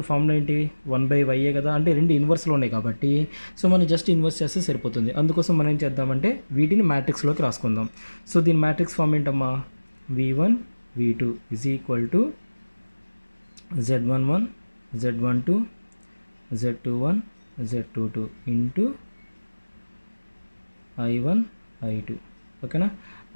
ఫార్ములా ఏంటి, 1/y కదా. అంటే రెండు ఇన్వర్స్లో ఉన్నాయి కాబట్టి సో మనం జస్ట్ ఇన్వర్స్ చేస్తే సరిపోతుంది. అందుకోసం మనం ఏం చేద్దామంటే వీటిని మ్యాట్రిక్స్లోకి రాసుకుందాం. సో దీని మ్యాట్రిక్స్ ఫార్మ్ ఏంటమ్మా, v1 v2 is equal to z11 z12 z21 Z22 into I1 I2 ఓకేనా.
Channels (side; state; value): both; inverted; correlation -1.00